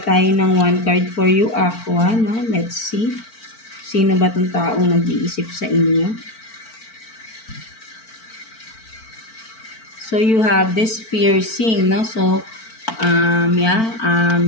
tayo ng 1 card for you, Aqua, no? Let's see. Sino ba itong taong nag-iisip sa inyo? So, you have this piercing, no? So,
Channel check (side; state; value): right; late; 4.5 ms